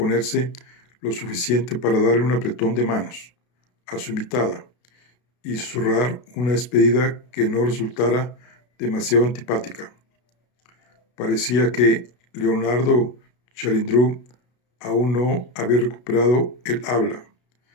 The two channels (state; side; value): late; right; 32 ms